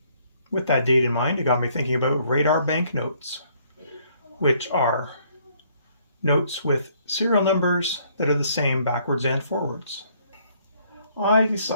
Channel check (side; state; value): both; inverted; correlation -0.65